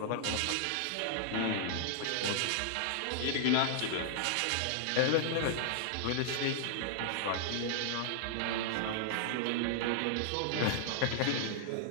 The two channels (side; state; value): both; different; correlation -0.01